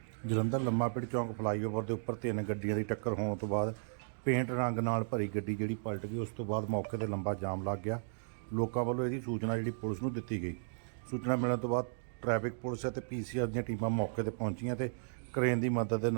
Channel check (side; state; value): left; silent; digital silence